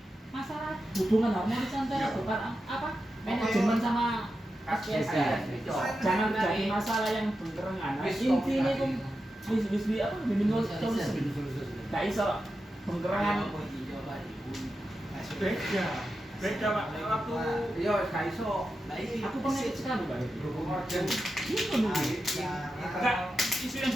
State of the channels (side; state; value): both; normal; correlation 0.90